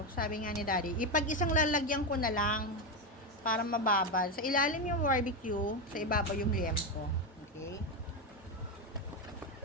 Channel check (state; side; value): normal; both; correlation 0.10